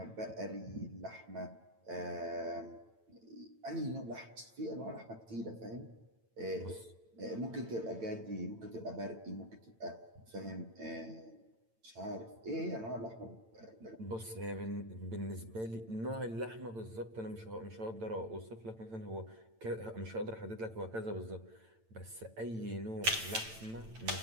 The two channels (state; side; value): late; left; 8.9 ms